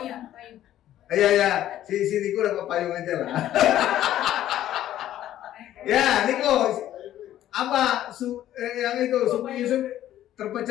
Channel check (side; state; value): right; quieter; 12.5 dB